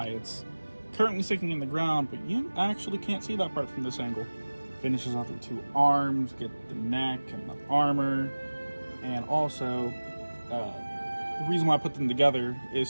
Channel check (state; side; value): inverted; both; correlation -1.00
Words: it's currently sticking in the ground, but you actually can't see that part from this angle. Finishes off the 2 arms, get the neck and the armor, and also the reason why I put them together